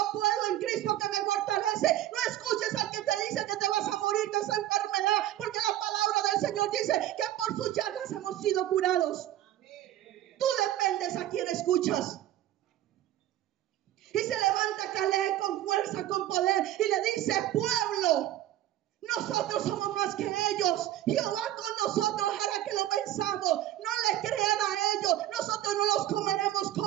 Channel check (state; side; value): quieter; left; 13.5 dB